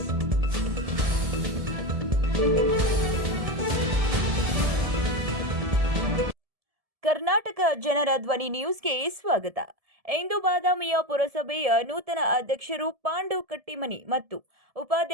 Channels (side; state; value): left; late; 1.7 ms